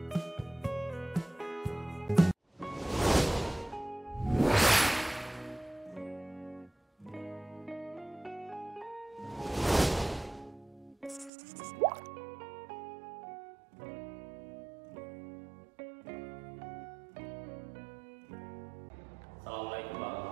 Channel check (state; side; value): drops out; left; at 11.3 s